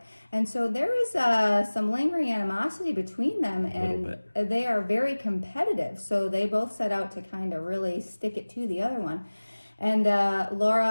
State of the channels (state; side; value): inverted; both; correlation -1.00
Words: And so there is some lingering animosity between them, and they are very competitive. So they both set out to kind of really stick it to the other one. And